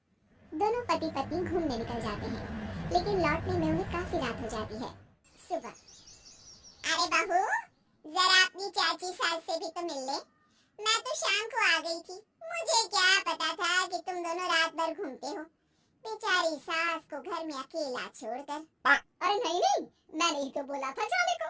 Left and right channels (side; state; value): both; identical; correlation 1.00